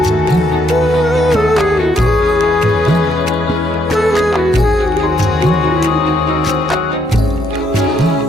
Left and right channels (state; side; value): normal; both; correlation 0.72